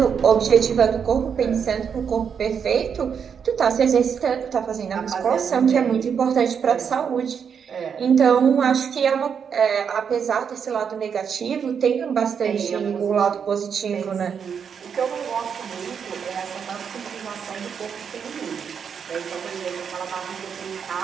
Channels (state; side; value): quieter; left; 7.1 dB